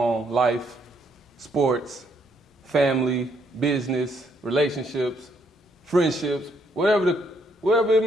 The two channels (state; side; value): normal; both; correlation 0.71